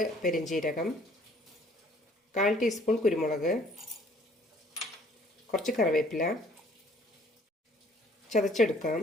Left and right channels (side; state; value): both; normal; correlation 0.58